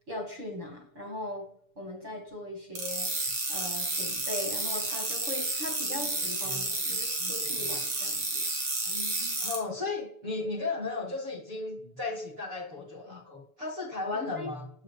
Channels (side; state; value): left; late; 6.9 ms